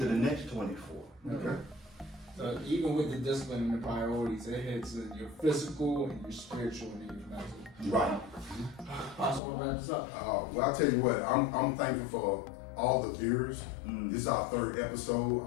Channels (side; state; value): right; drops out; at 9.4 s